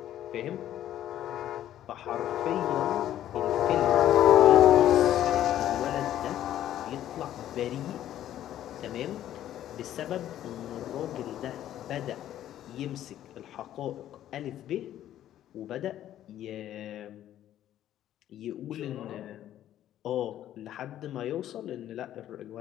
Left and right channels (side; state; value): right; quieter; 12.0 dB